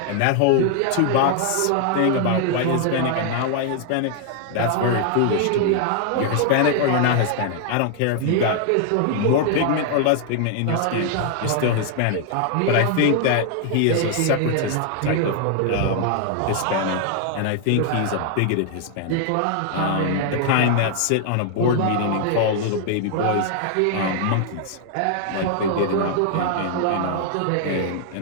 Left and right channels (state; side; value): different; both; correlation 0.00